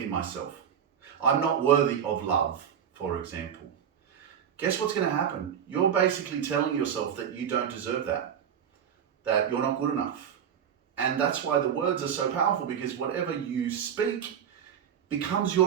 in myself, I'm not worthy of love, for example, guess what's going to happen? You're basically telling yourself that you don't deserve that you're not good enough. And that's why the words are so powerful, because whatever you speak becomes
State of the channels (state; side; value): quieter; left; 8.5 dB